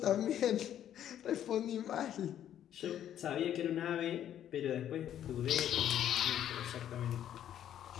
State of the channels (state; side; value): quieter; right; 10.7 dB